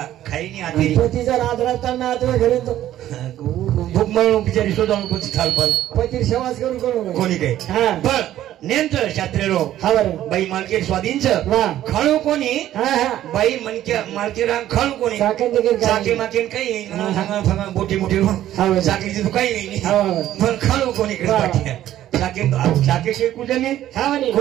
खाई नहीं आती पतीचा रात राहताना आते घरी तो भूक म्हणून बिचारी शोधावून कोणी थालपाल पती सेवाच करू करू कोणी काही पण नेमचं शास्त्रेरो बाई मालके स्वाधीन खळू कोणी बाई मनक्या मालके रांग खळू कोणी चाके माकेन काही नाही बोटी मोठी चाकीची तो काही नाही पण खळू कोणी चाके के कुजनी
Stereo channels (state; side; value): quieter; left; 12.8 dB